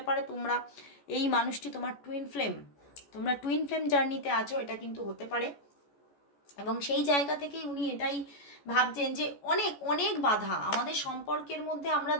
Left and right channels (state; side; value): late; right; 14 ms